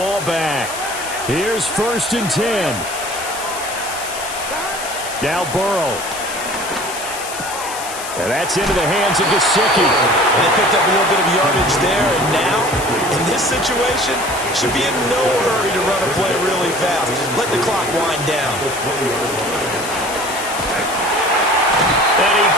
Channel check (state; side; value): noise; left; hiss, 10 dB below the sound